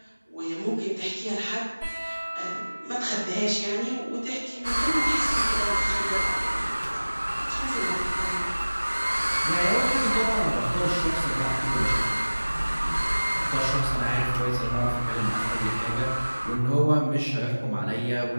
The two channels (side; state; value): both; inverted; correlation -1.00